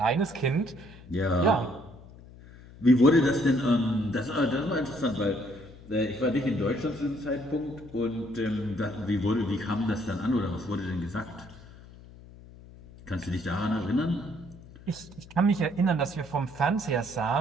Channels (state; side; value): noise; left; hum, 20 dB below the sound